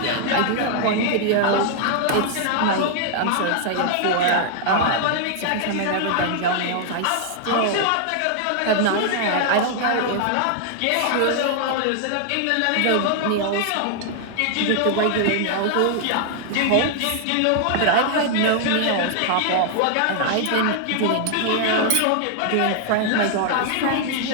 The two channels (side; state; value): both; different; correlation 0.00